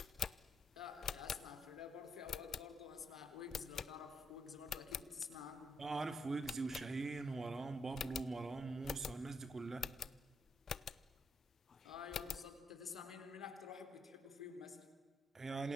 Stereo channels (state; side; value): normal; both; correlation 0.77